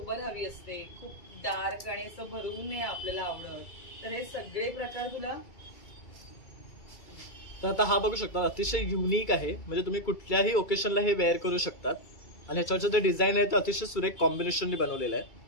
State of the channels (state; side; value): late; right; 2.3 ms